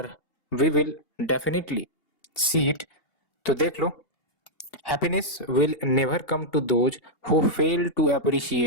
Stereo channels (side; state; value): right; late; 2.7 ms